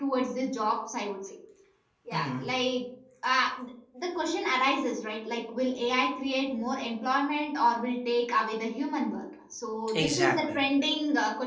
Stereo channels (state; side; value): identical; both; correlation 1.00